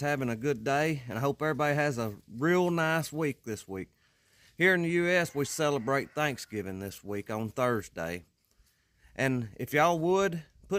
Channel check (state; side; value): identical; both; correlation 1.00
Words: a good day, and I hope everybody has a real nice week this week. Here in the U.S., we celebrate Thanksgiving this week on Thursday. And if y'all would,